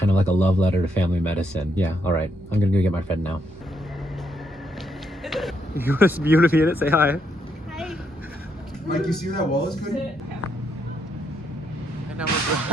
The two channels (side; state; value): both; normal; correlation 0.76